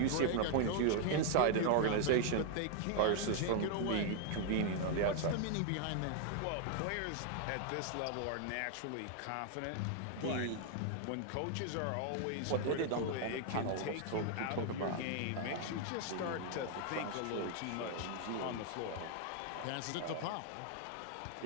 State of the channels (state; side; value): different; both; correlation 0.00